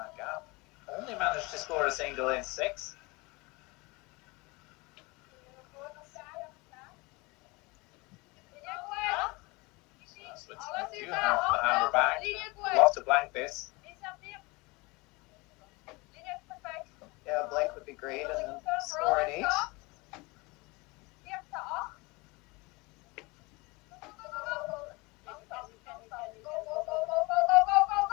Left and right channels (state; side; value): quieter; right; 25.3 dB